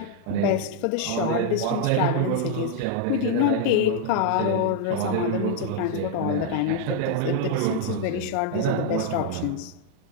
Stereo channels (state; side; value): different; both; correlation 0.00